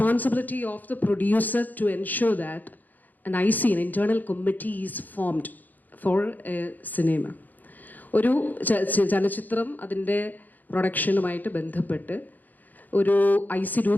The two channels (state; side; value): late; right; 0.084 ms